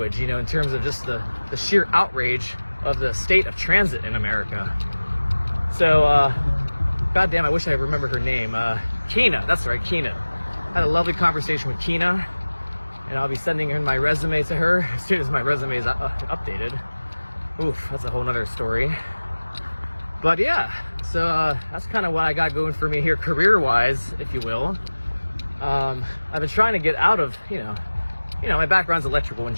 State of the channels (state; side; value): inverted; both; correlation -1.00